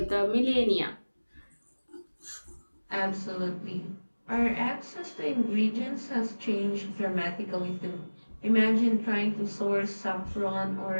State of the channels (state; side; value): inverted; both; correlation -1.00